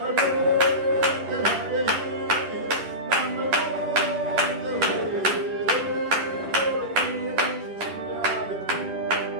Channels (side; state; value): left; late; 10 ms